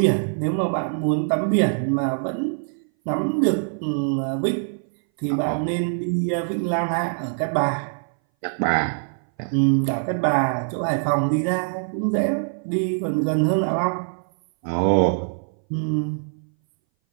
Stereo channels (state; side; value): silent; left; 60 dB below the other